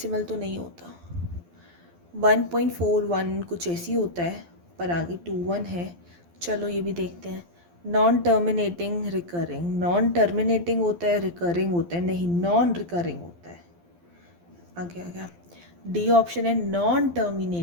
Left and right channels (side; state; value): left; late; 12 ms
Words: तो नहीं होता। 1.41 कुछ ऐसी होता है, पर आगे 21 है। चलो ये भी देखते हैं। Non terminating recurring, non terminating होता है, रिकरिंग होता है, नहीं नॉन रिकरिंग होता है। आगे आ गया डी ऑप्शन है नॉन